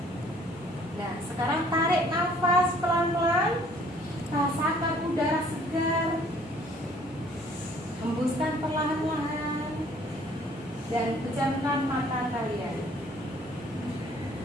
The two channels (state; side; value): normal; both; correlation 0.58